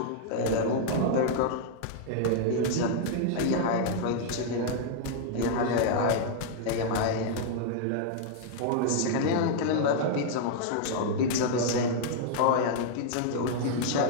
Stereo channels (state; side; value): different; both; correlation -0.01